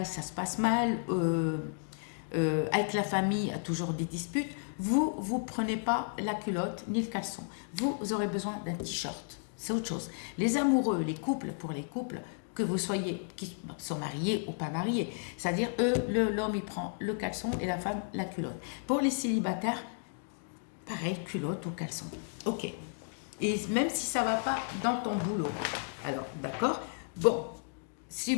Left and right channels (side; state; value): right; silent; digital silence